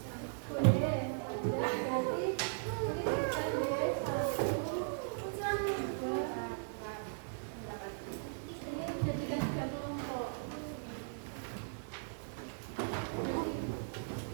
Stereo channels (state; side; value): silent; left; digital silence